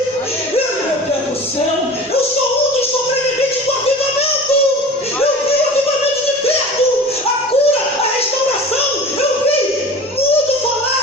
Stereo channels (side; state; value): both; normal; correlation 0.38